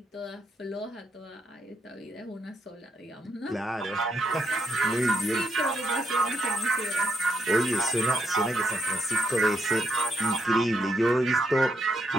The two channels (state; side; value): normal; both; correlation 0.78